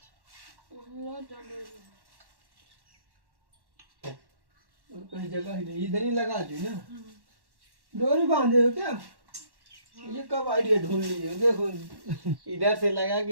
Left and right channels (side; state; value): left; late; 1.1 ms